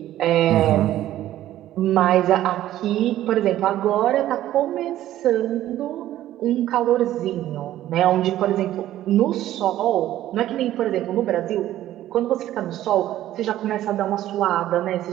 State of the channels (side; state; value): left; quieter; 13.4 dB